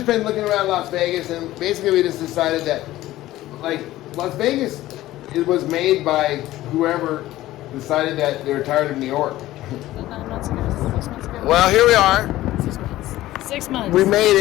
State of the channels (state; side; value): quieter; right; 15.7 dB